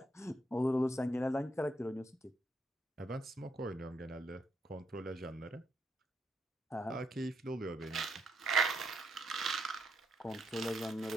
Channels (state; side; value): normal; both; correlation 0.77